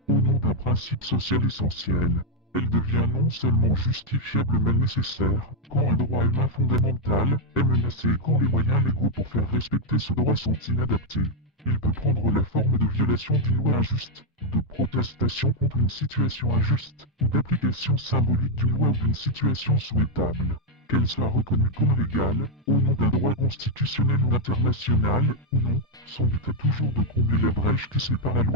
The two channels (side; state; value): both; normal; correlation 0.01